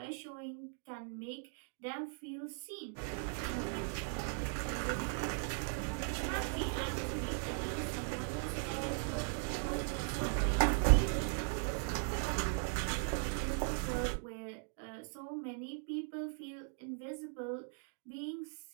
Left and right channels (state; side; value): silent; left; 52 dB below the other